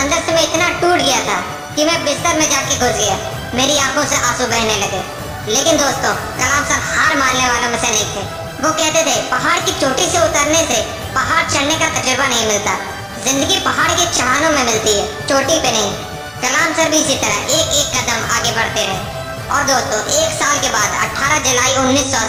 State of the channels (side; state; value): both; identical; correlation 1.00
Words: से मैं इतना टूट गया था कि मैं बिस्तर में जाके घुस गया, मेरी आंखों से आंसू बहने लगे। लेकिन दोस्तों, कलाम सर हार मानने वालों में से नहीं थे। वो कहते थे, पहाड़ की चोटी से उतरने से पहाड़ चढ़ने का तजुर्बा नहीं मिलता, जिंदगी पहाड़ के चढ़ानों में मिलती है, चोटी पे नहीं। कलाम सर भी इसी तरह एक एक कदम आगे बढ़ते रहे। और दोस्तों, एक साल के बाद 18 जुलाई